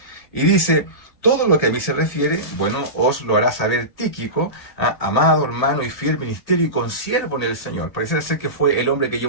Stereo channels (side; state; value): right; late; 1.8 ms